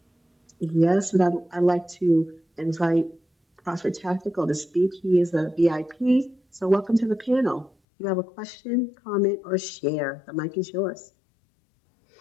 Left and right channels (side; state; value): right; drops out; at 7.7 s